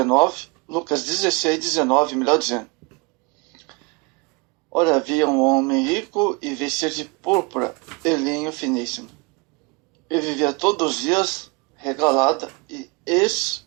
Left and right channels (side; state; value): left; quieter; 28.1 dB